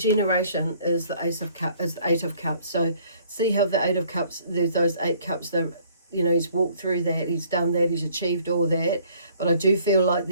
is the Eight of Cups. So see how the Eight of Cups, there's those 8 cups, he's walked through that, he's done that, he's achieved all that. But I do feel like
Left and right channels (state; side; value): inverted; both; correlation -0.59